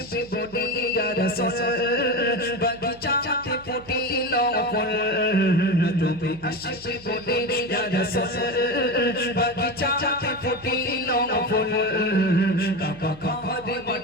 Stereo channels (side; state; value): right; noise; hum, 22 dB below the sound